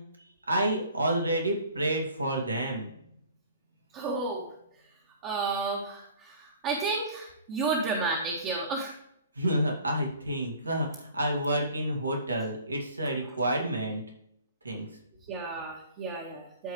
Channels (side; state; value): both; inverted; correlation -0.48